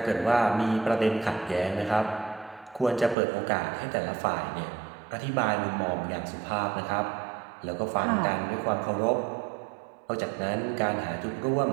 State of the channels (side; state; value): left; drops out; at 3.2 s